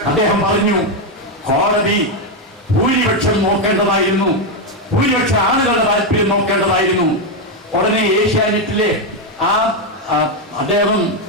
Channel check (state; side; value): normal; both; correlation 0.05